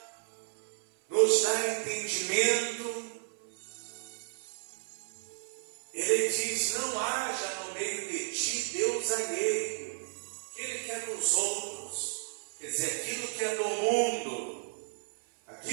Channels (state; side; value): silent; left; 56 dB below the other